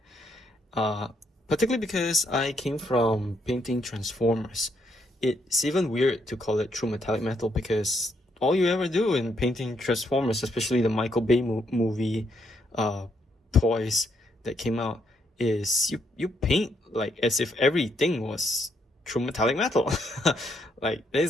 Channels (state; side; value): normal; both; correlation 0.74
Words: Particularly because I came from painting Transformers. It's even weird to call it true metallic metal because all you ever do in painting Transformers, especially the Michael Bay movie toys that came out, is you paint like as if everything was true metallic metal. Like, there